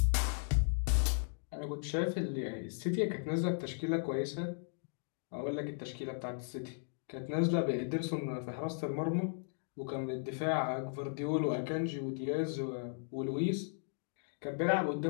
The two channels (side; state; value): right; silent; digital silence